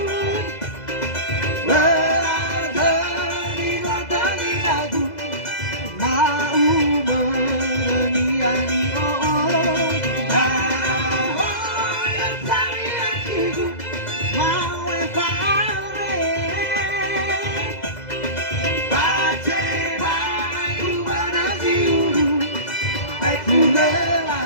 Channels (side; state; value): right; late; 2.0 ms